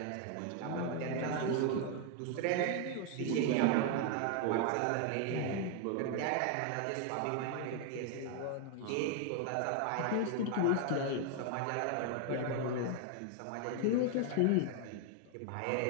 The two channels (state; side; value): different; both; correlation 0.01